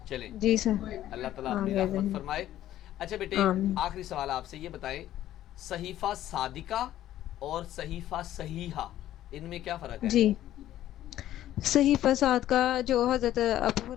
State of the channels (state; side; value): quieter; right; 12.9 dB